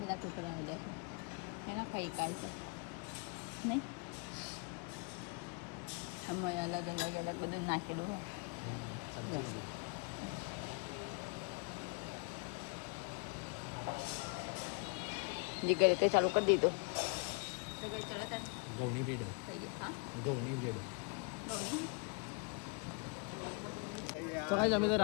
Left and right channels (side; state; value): right; quieter; 35.8 dB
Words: બધા ટુકડા આવ્યા છે એના ખાઈ કાંઈ નહીં આમાં અલગ અલગ બધું નાખી દીધું સમજી જીગરે તે ચાલુ કરી દીધું તો ગાઈસ ચલો તાર ઘઉંની બ્રેડ થઈ ગયા હા ઘઉંની બ્રેડ ઘઉંની તો કાંઈ અમે તો